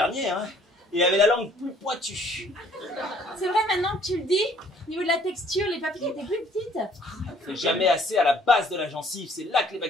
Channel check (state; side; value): normal; both; correlation 0.59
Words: hein. Il avait la langue plus pointue. C'est vrai maintenant que tu le dis. Au niveau de la texture, les papilles étaient plus petites. C'est jamais assez à la base de la gencive, c'est là que les